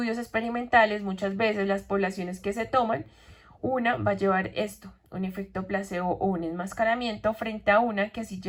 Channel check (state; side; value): identical; both; correlation 1.00